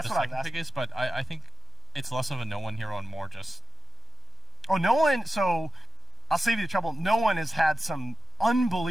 the what second pick is, but I think it's less of a no-one hero and more just... Oh, no one, so I'll save you the trouble. No one has had some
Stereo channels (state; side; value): normal; both; correlation 0.92